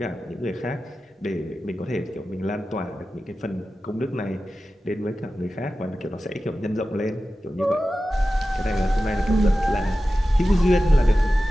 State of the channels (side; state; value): both; normal; correlation 0.94